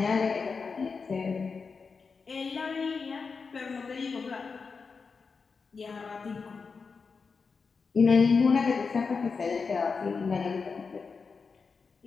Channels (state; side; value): quieter; right; 5.0 dB